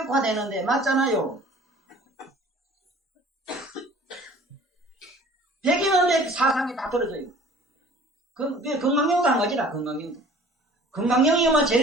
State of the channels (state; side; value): normal; both; correlation 0.49